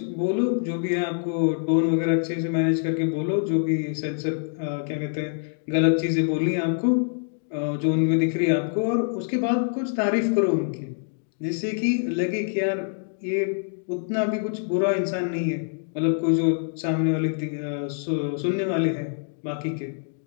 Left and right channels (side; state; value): right; silent; digital silence